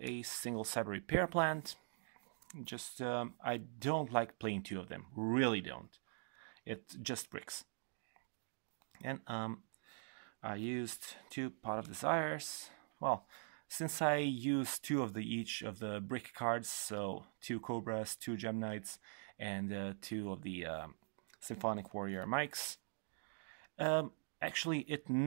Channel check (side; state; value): left; silent; digital silence